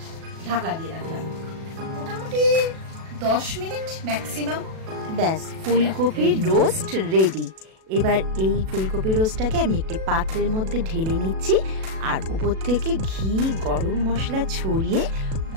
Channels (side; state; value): left; late; 37 ms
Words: ঢাকা দিয়ে রাখলাম মোটামুটি 10 মিনিট ম্যাক্সিমাম। ব্যাস, ফুলকপির রোস্ট রেডি। এবার এই ফুলকপি রোস্টটাকে আমি একটি পাত্রের মধ্যে ঢেলে নিচ্ছি, আর উপর থেকে ঘি, গরম মশলা ছড়িয়ে